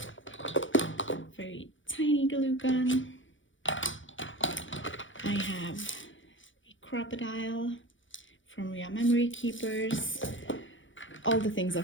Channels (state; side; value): late; right; 0.56 ms